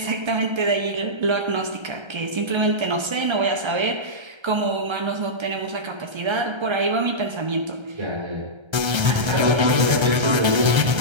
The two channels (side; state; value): left; late; 1.3 ms